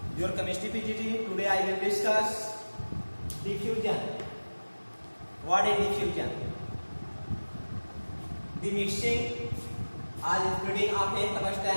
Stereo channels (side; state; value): both; inverted; correlation -1.00